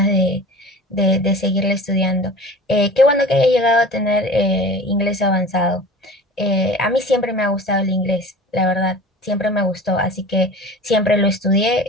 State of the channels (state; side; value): normal; both; correlation 0.39